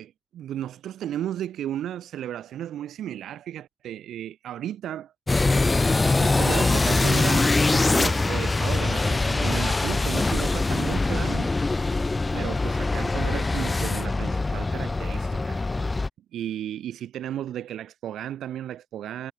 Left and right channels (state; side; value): normal; both; correlation 0.92